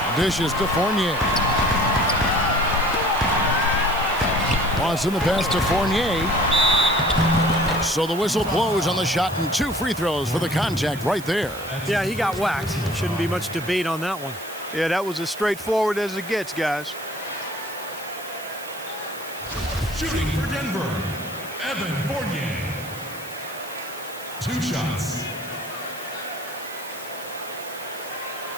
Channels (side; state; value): right; noise; hiss, 15 dB below the sound